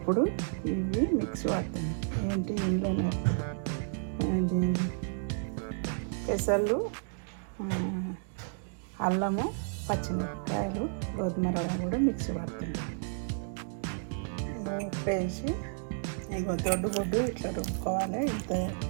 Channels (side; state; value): left; silent; digital silence